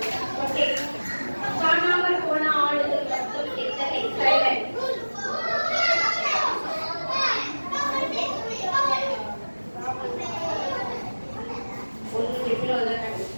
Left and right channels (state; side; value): inverted; both; correlation -1.00